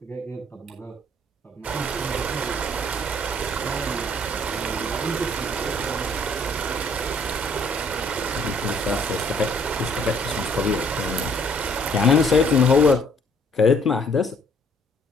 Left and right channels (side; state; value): both; normal; correlation 0.62